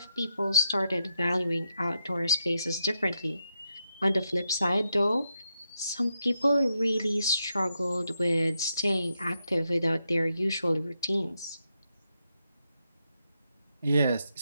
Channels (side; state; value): both; inverted; correlation -0.82